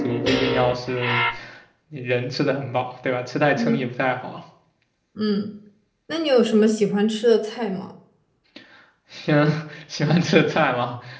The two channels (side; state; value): both; identical; correlation 1.00